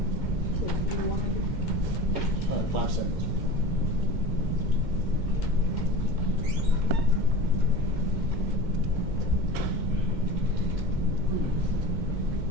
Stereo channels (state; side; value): late; left; 2.1 ms